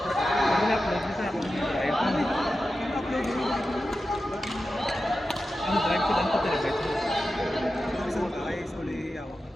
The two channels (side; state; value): both; normal; correlation 0.92